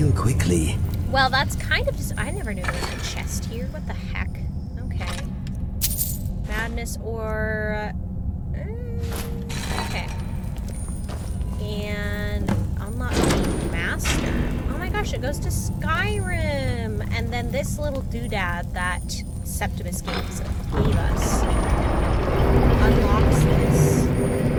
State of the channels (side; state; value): both; identical; correlation 1.00